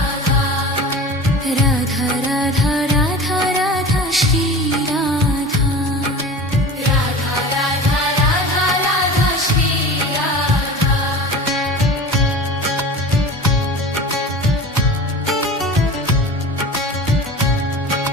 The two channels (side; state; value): both; normal; correlation 0.35